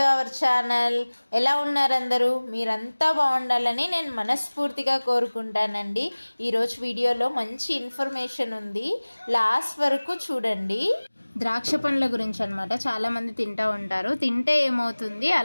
our channel. ఎలా ఉన్నారు అందరూ? మీరంతా బాగుండాలని నేను మనస్ఫూర్తిగా కోరుకుంటానండి. ఈరోజు వీడియోలో మంచి ఇన్ఫర్మేషన్ ఉంది, లాస్ట్ వరకు చూడండి. ద్రాక్ష పండ్ల గురించి అనమాట. చాలామంది తింటూ ఉంటారు. తింటే ఏమవుతుంది,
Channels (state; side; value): inverted; both; correlation -1.00